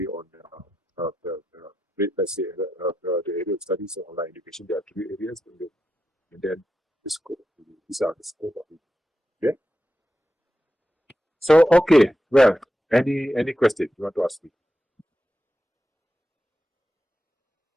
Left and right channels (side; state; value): both; normal; correlation 0.88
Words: on let's say the area of studies of online education. There are three areas, and then the scope. These are the scope of it. Okay. So okay, well, any question you want to ask me?